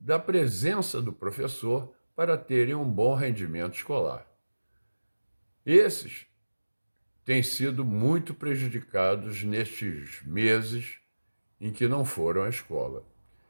presença do professor para terem um bom rendimento escolar. Esses têm sido muito prejudicados nestes meses em que não foram à escola.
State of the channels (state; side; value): inverted; both; correlation -1.00